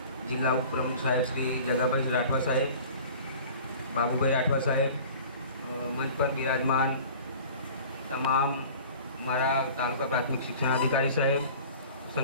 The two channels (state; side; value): inverted; both; correlation -0.43